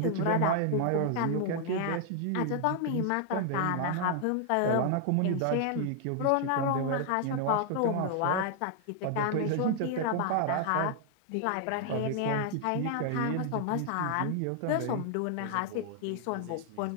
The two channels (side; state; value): both; different; correlation 0.00